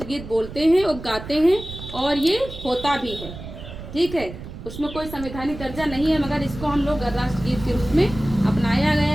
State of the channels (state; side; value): noise; right; rumble, 12 dB below the sound